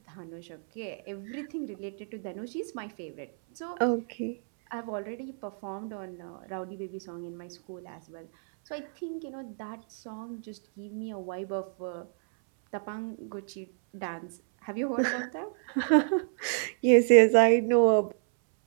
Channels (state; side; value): silent; left; 58 dB below the other